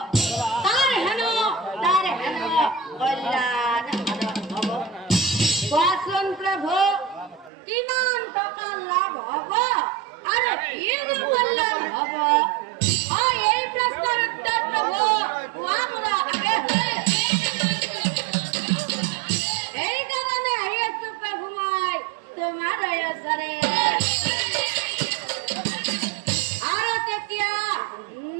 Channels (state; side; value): drops out; left; at 7.5 s